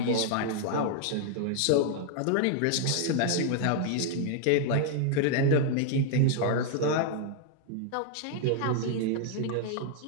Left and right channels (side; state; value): both; different; correlation 0.00